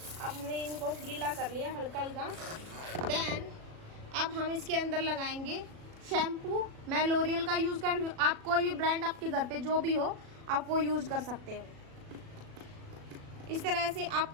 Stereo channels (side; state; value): left; late; 37 ms